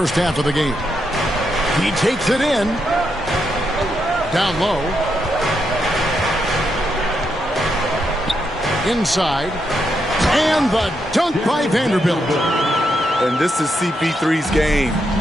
half of the game. He takes it in. Down low. Inside. And the dunk by Vanderbilt. And this is CP3's game.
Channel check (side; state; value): both; normal; correlation 0.81